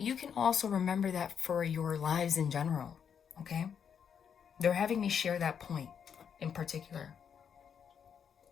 you can also remember that for your lives in general, okay? They're having me share that point in particular.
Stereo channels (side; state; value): right; quieter; 7.6 dB